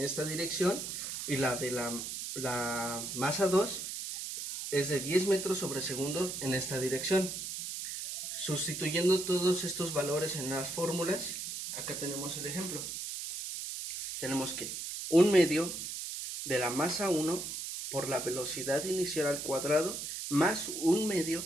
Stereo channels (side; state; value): right; noise; hiss, 6 dB below the sound